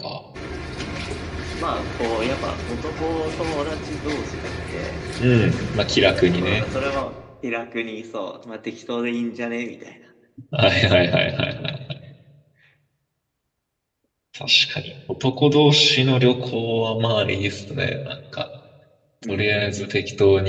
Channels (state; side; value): identical; both; correlation 1.00